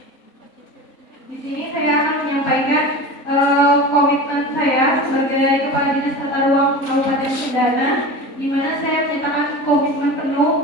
di sini saya akan menyampaikan komitmen saya sebagai Kepala Dinas Tata Ruang Kabupaten Cendana, di mana saya menyatakan komitmen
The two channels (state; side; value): late; right; 3.7 ms